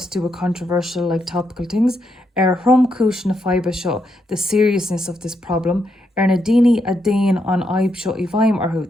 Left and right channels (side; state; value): both; normal; correlation 0.80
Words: to do with controversial, like topical things. Hrum Kush na Fiba Show, the seriousness of this problem. Nadini Adain on Aib Show Ivaim Arhu,